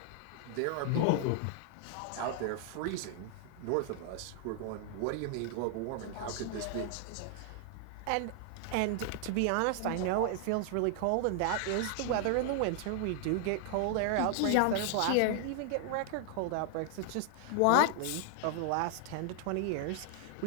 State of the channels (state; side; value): different; both; correlation 0.00